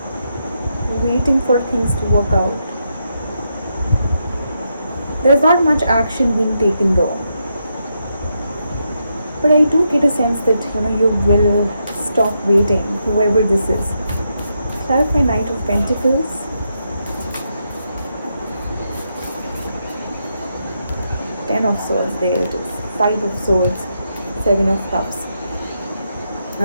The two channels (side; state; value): both; inverted; correlation -0.82